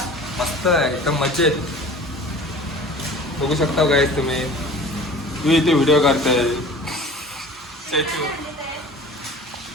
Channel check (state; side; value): normal; both; correlation 0.43